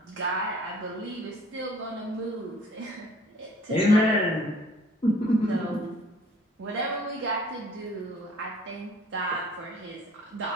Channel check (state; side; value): normal; both; correlation 0.54